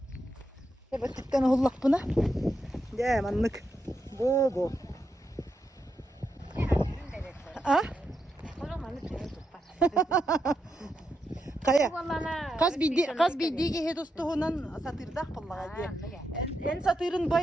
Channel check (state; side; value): normal; both; correlation 0.84